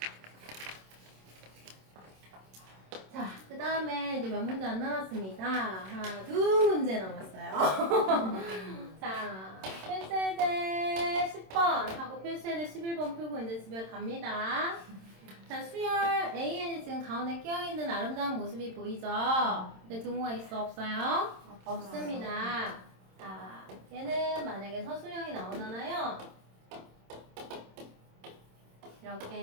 자, 그 다음에 이제 몇 문제 안 남았습니다. 하나, 두 문제 남았어요. 자, 필수예제 10번 하고 필수예제 11번 풀고 이제 집에 갑니다. 자, 수열 AN이 지금 가운데 끼어있는 아름다운 모습이 보이죠? 근데 등호가 있어, 없어요? 없습니다. 자, 얘는 만약에 서술형이 나오잖아요.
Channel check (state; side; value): late; left; 26 ms